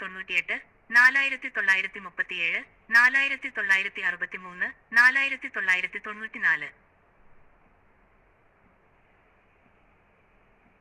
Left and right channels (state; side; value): identical; both; correlation 1.00